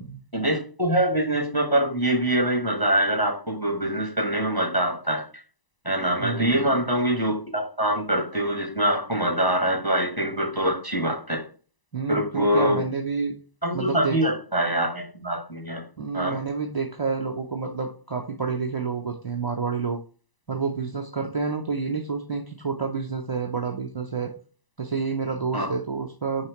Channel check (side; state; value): right; late; 1.0 ms